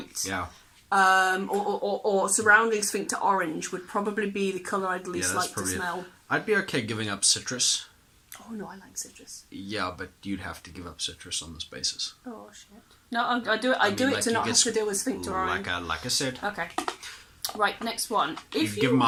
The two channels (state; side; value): identical; both; correlation 1.00